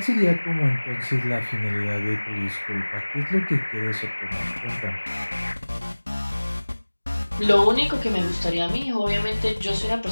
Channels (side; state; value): both; inverted; correlation -1.00